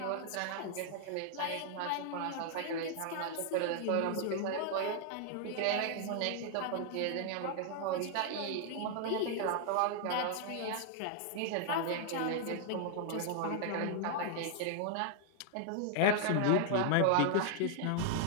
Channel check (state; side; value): different; both; correlation 0.00